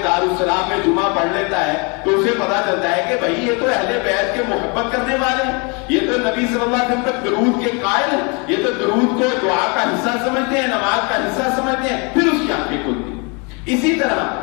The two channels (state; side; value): quieter; right; 32.1 dB